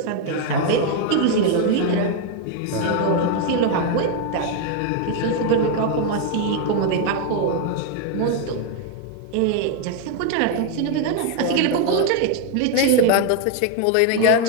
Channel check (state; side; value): different; both; correlation 0.01